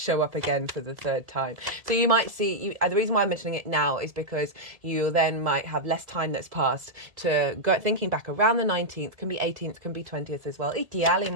up again for the 3rd time. So you might see, the reason why I'm mentioning it now is because you then might have less time that's passed to go thinking back around the 19th, can be 18th, can be 20th as well,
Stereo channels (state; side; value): late; left; 1.8 ms